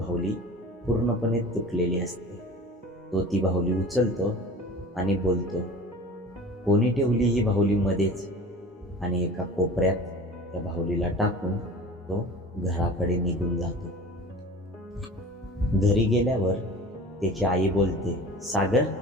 पूर्णपणे तुटलेली असते. तो ती बाहुली उचलतो आणि बोलतो, कोणी ठेवली ही बाहुली मध्येच? आणि एका कोपऱ्यात त्या बाहुलीला टाकून तो घराकडे निघून जातो. घरी गेल्यावर त्याची आई बोलते, सागर,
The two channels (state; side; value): normal; both; correlation 0.40